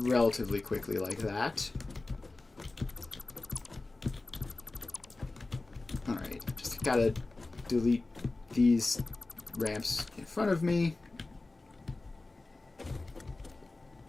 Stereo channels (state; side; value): quieter; right; 3.2 dB